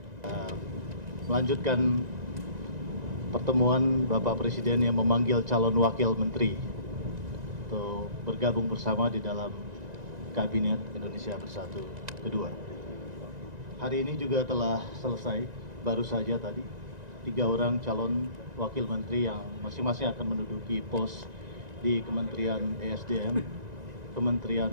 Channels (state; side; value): late; left; 1.9 ms